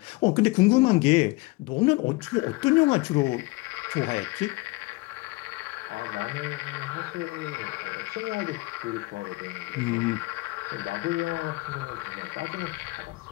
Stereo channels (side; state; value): right; quieter; 23.1 dB